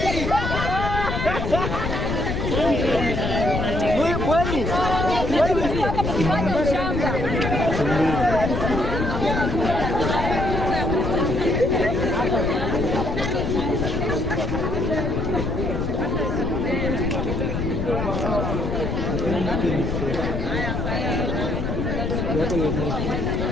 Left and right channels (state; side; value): noise; left; rumble, 3 dB below the sound